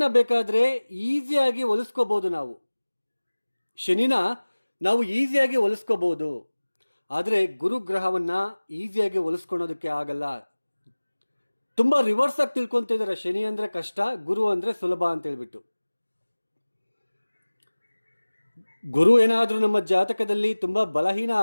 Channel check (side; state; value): both; inverted; correlation -1.00